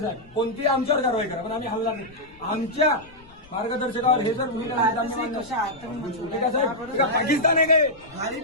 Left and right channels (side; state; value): left; noise; rumble, 25 dB below the sound